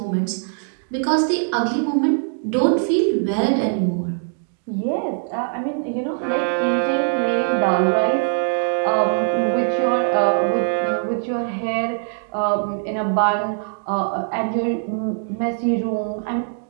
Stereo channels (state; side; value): silent; left; digital silence